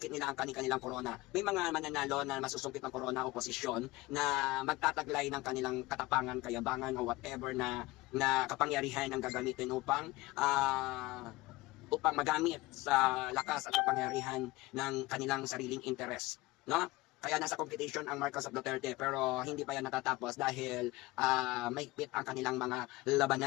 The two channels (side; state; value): right; quieter; 20.2 dB